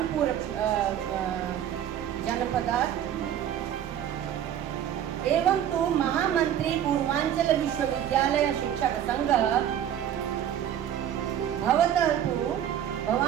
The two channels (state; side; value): quieter; left; 10.2 dB